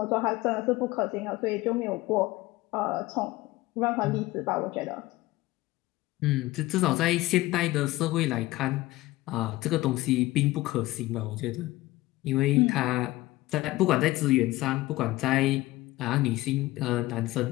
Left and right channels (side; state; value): right; quieter; 18.4 dB